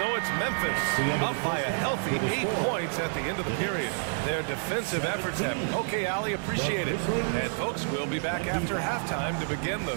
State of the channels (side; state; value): left; silent; digital silence